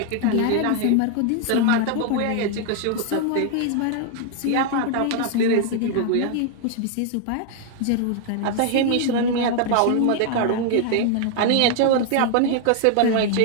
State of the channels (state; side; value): different; both; correlation 0.00